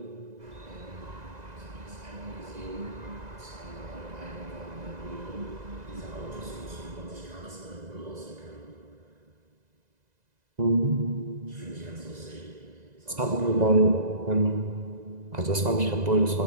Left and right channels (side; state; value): left; late; 2.0 ms